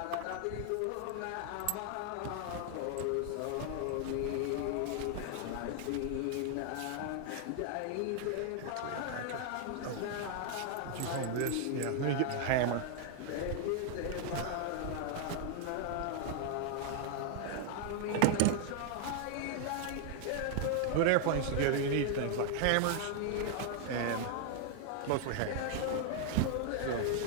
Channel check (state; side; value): different; both; correlation 0.00